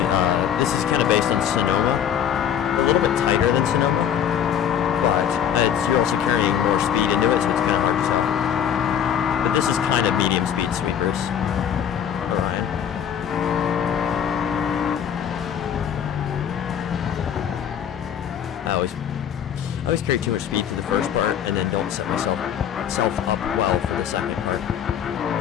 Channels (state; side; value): quieter; right; 9.0 dB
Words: this is kind of based on Sonoma. A little bit tighter than Sonoma, but you're also carrying more speed into it, so it's kind of hard to tell. But this is kind of medium speed sweepers. Orion. I always carry too much speed for the first part, and then don't set myself up well for the second part.